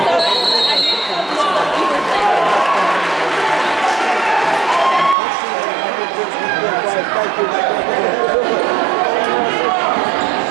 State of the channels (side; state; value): left; drops out; at 5.2 s